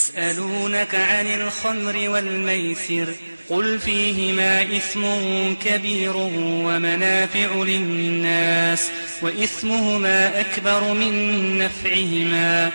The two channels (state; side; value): inverted; both; correlation -1.00